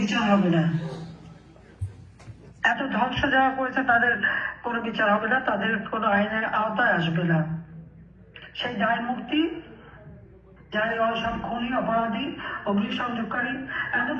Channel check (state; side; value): identical; both; correlation 1.00